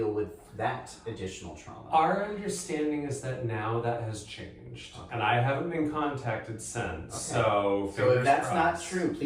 with that additional trauma. Our understanding is that now that has changed, and I haven't been contacted since. Okay. So if that's crossed. not true,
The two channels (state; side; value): identical; both; correlation 1.00